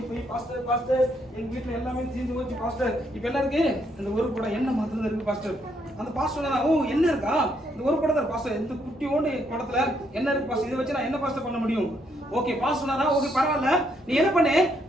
போய் பாஸ்டர் எங்க வீட்டுல எல்லாமே தீர்ந்து போச்சு பாஸ்டர், இப்ப என்ன இருக்கு, இந்த ஒரு கூட எண்ணெய் மாத்திரம் இருக்கு பாஸ்டர். அந்த பாஸ்டர் சொன்னா, ஓ என்ன இருக்கா, இந்த ஒரு குடம் தான் பாஸ்டர், இந்த குட்டியோண்டு குடத்துல என்ன இருக்கு பாஸ்டர், இதை வச்சு நான் என்ன பாஸ்டர் பண்ண முடியும். ஓகே பாஸ்டர் சொன்னாரா, ஓகே பரவாயில்ல, நீ என்ன பண்ணு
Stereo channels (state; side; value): normal; both; correlation 0.73